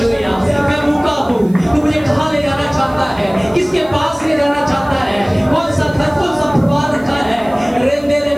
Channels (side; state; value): right; noise; hiss, 28 dB below the sound